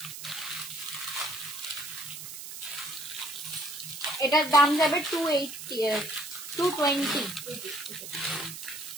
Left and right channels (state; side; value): noise; right; hiss, 10 dB below the sound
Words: এটার দাম যাবে 220